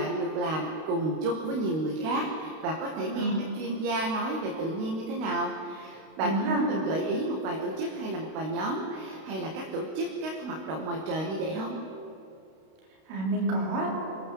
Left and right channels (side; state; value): left; late; 32 ms